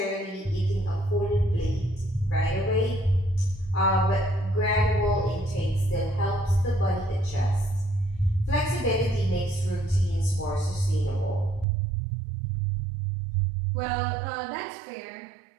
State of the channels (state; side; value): drops out; left; at 11.7 s